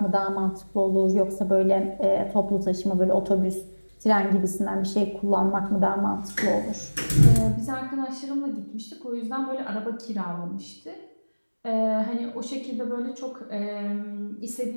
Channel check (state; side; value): inverted; both; correlation -1.00